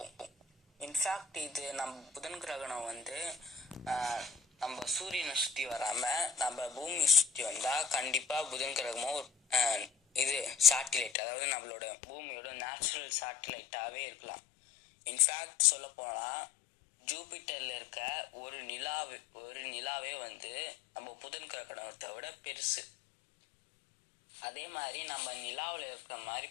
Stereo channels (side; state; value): right; drops out; at 11.1 s